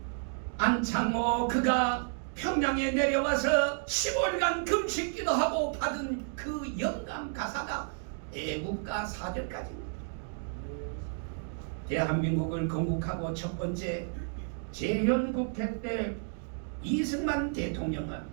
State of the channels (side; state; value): left; silent; 57 dB below the other